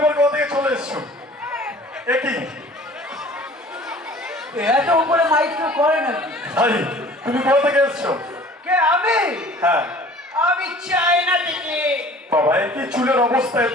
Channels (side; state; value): both; normal; correlation 0.48